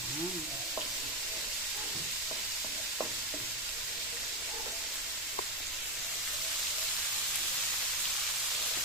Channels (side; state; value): both; normal; correlation 0.09